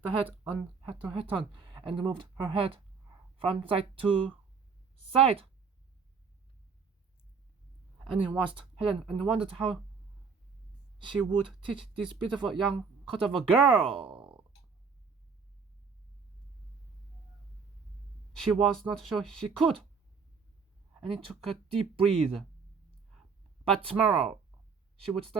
the hat on and moved her head from side to side. Annie watched Helen and wondered how she would teach this beautiful young cut of a girl. She was not sure she could. Annie took a deep breath. But tomorrow, she would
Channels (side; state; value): left; quieter; 5.5 dB